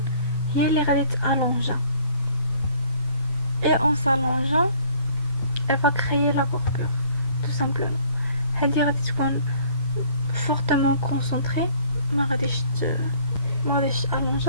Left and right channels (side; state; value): both; inverted; correlation -0.57